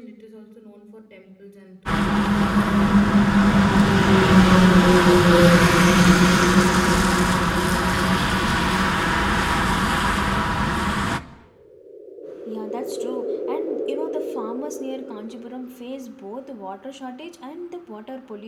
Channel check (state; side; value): identical; both; correlation 1.00